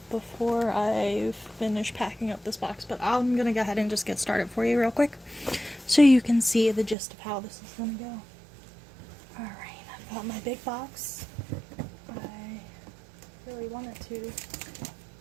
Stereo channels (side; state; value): left; drops out; at 7.0 s